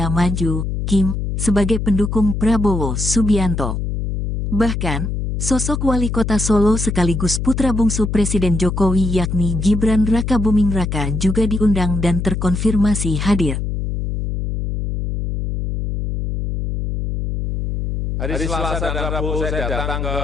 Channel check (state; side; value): noise; left; hum, 3 dB below the sound